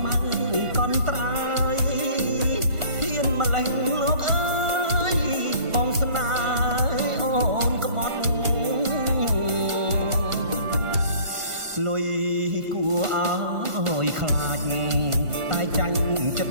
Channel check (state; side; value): late; left; 1.5 ms